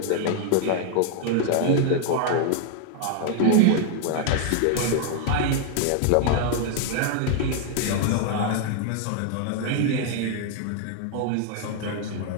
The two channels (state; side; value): different; both; correlation 0.00